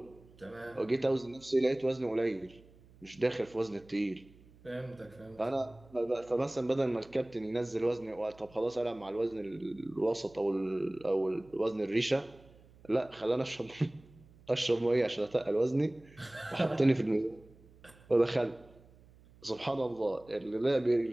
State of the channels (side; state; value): right; noise; hum, 25 dB below the sound